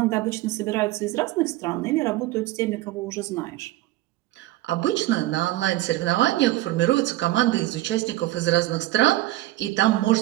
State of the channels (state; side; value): quieter; left; 16.6 dB